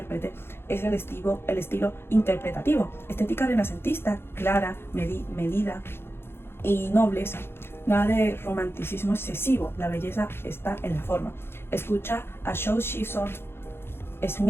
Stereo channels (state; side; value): late; right; 0.11 ms